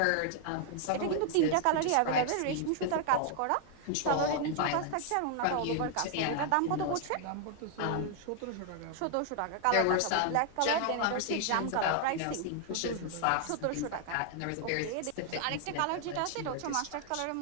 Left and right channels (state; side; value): different; both; correlation 0.00